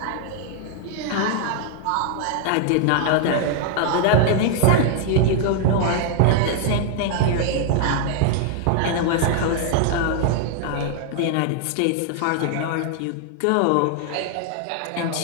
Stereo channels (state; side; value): different; both; correlation 0.00